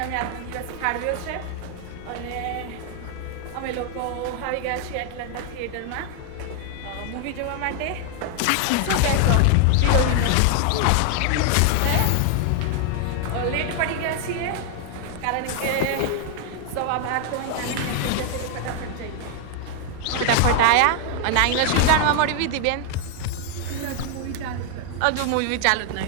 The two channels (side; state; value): both; different; correlation 0.00